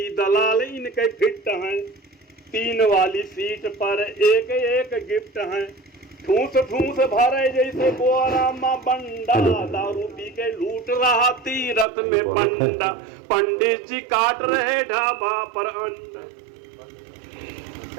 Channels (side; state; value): left; drops out; at 11.9 s